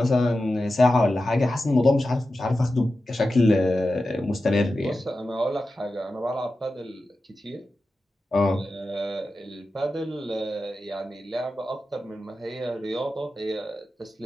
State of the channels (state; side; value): normal; both; correlation 0.92